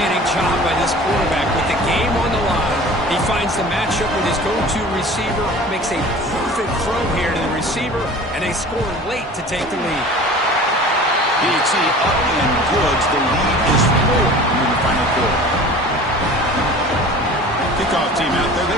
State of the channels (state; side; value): normal; both; correlation 0.42